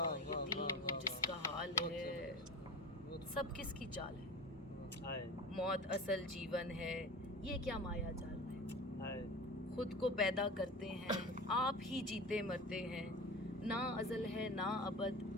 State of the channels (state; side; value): normal; both; correlation 0.33